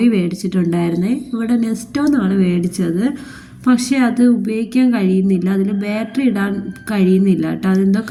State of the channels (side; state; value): both; identical; correlation 1.00